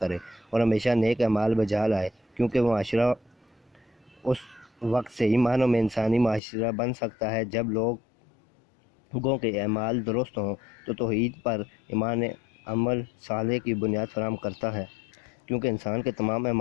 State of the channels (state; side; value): drops out; right; at 6.4 s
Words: اور ہمیشہ نیک اعمال بجا لائے، کیونکہ وہ معاشرہ اس وقت صحیح معنوں میں انسانی معاشرہ بن سکتا ہے جب لوگوں کے اعمال درست ہوں۔ تو توحید پر ایمان عمل صالح کی بنیاد فراہم کرتا ہے، کیونکہ انسان کے تمام